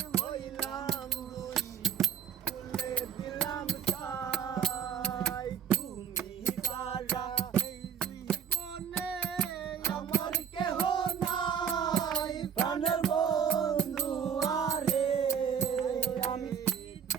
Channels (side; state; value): left; quieter; 8.0 dB